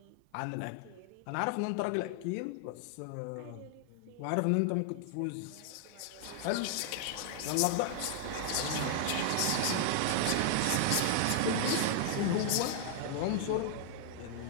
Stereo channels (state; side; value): different; both; correlation -0.01